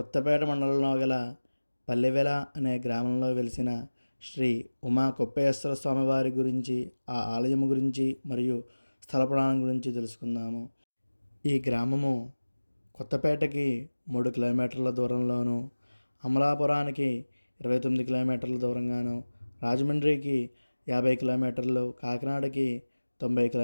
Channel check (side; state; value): both; inverted; correlation -1.00